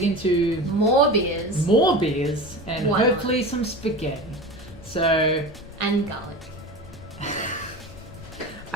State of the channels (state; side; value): noise; left; rumble, 18 dB below the sound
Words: into More beers. more beers and Why not? hopefully some spaghetti. So And garlic.